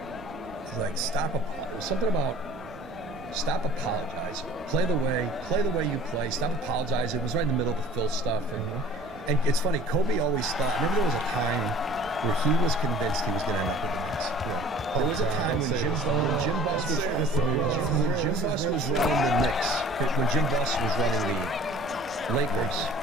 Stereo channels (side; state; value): both; normal; correlation 0.47